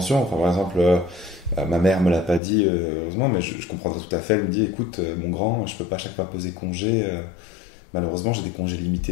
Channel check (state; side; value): drops out; right; at 2.4 s